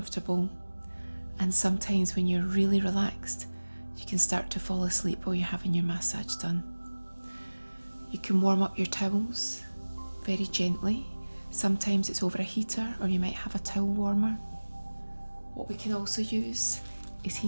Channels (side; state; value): both; inverted; correlation -1.00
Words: And sometimes when you're really relaxed, you can start to fall asleep while you're having your massage done. You can warm up your towels very gently. Sometimes it's over a heater, or you might have a towel warmer. What we can also use is